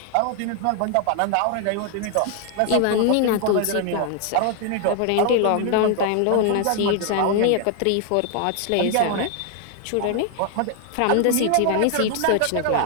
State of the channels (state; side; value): different; both; correlation 0.00